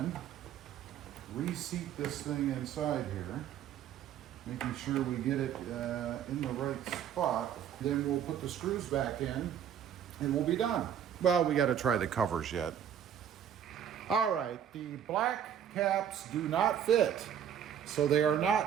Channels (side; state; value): left; quieter; 9.2 dB